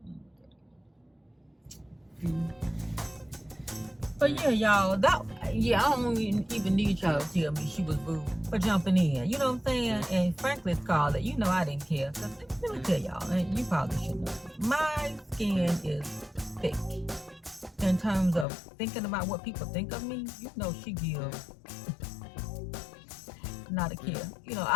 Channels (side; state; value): right; drops out; at 18.4 s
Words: But yeah, y'all, I don't even need y'all to tell me she was rude for jumping in. You know what I'm saying? And frankly, Scarlett, you know I didn't care. Cause let me tell y'all, and you probably should know, my skin is thick. In terms of thinking about what people think of me, you know she gives not a care. You know,